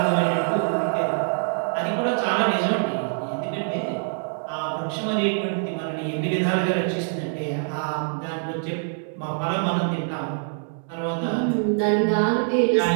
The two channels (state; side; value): silent; left; digital silence